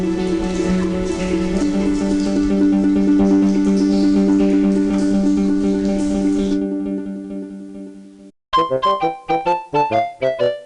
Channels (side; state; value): both; identical; correlation 1.00